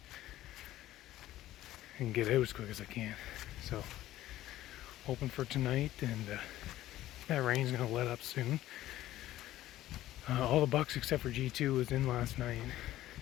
and get out as quick as I can. So hoping for tonight, and that rain's gonna let up soon. All the bucks except for G2 was in last night.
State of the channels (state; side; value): quieter; right; 14.5 dB